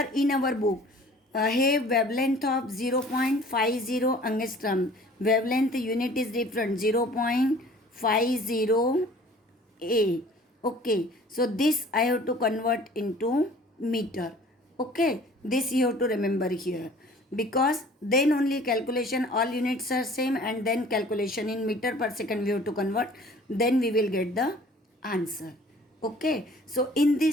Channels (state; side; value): normal; both; correlation 0.50